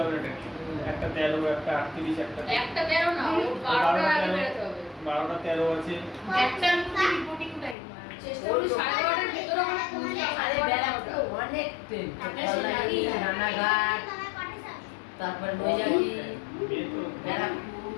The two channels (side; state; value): right; drops out; at 7.8 s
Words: হবে না ট্রেনে। একটা 13, একটা 38, একটা 13 না, 12টার আগে বেরোতে হবে। 12টা 13 আছে। একটার মধ্যে রিপোর্টিং টাইম। চেষ্টা করি 12:30টার ভিতরে মানে পৌঁছে যাওয়ার। আরে ব্যারাকপুর অনেক ট্রেন, কল্যাণী, রানাঘাট, তারপরে নৈয়াটি, মেয়ে তো ব্যারাকপুর।